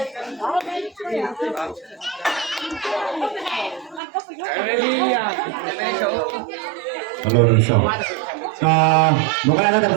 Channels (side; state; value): left; drops out; at 4.0 s